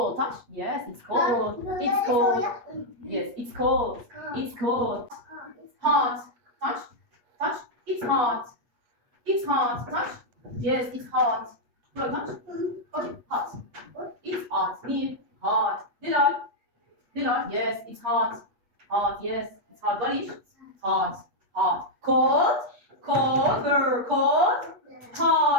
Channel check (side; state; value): left; late; 8.4 ms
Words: Touch. Yes, it's cold. It's cold. Yes, it's cold. It's cold. Hot. Touch. Touch. It's hot. It's hot. Touch. Yes, it's hot. Go touch. Okay, hot. It's hot. Near. Hot. Did I? Did I? Yes, it's hot. Hot. Yes, it's hot. Golish. Hot. Hot. Cold. Cold. Cold.